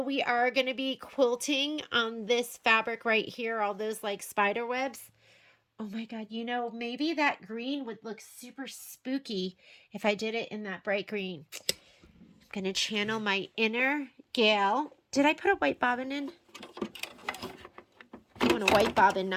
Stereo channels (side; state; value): both; identical; correlation 1.00